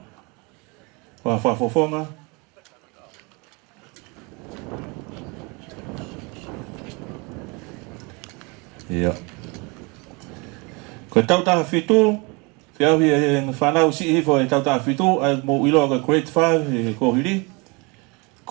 Whafofonga. Ia. Ko tautaha fitu, whiahui e whanau si hifo e tautaha fitu, ai mo iloa ka grade 5 e kohiri.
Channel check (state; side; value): quieter; left; 28.9 dB